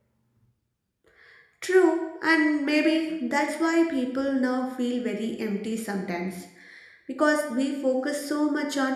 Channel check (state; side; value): identical; both; correlation 1.00